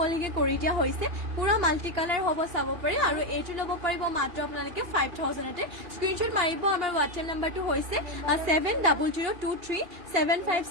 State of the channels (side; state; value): left; late; 2.8 ms